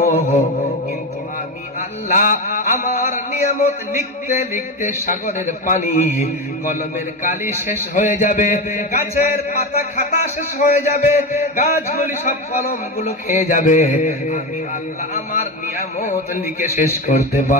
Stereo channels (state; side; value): normal; both; correlation 0.19